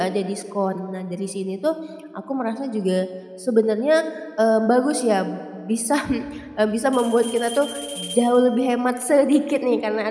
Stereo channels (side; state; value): both; identical; correlation 1.00